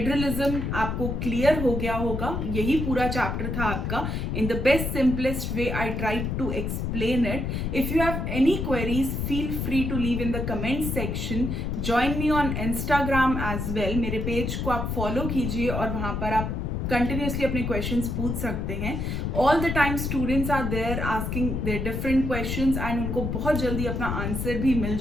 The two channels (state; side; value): noise; left; rumble, 2 dB below the sound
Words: आपको क्लियर हो गया होगा। यही पूरा चैप्टर था आपका। In the best simplest way I try to explain it. If you have any queries feel free to leave in the comment section. Join me on Instagram as well. मेरे page को आप follow कीजिए और वहां पर आप continuously अपने questions पूछ सकते हैं। All the time students are there asking their different questions and उनको बहुत जल्दी अपना आंसर भी मिल